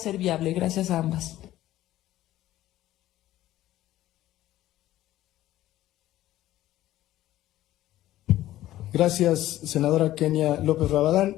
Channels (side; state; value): right; quieter; 14.4 dB